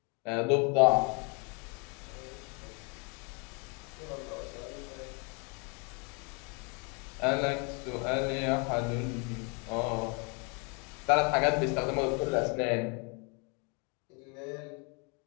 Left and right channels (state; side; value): quieter; right; 33.7 dB